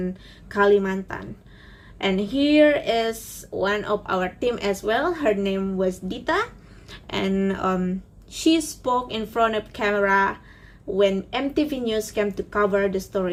Kalimantan. And here is one of our team as well. Her name was Dita. And she spoke in front of camera when MTV News came to cover the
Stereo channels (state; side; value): identical; both; correlation 1.00